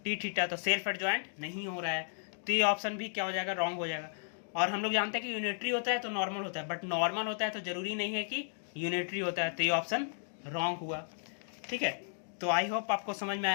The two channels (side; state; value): right; silent; digital silence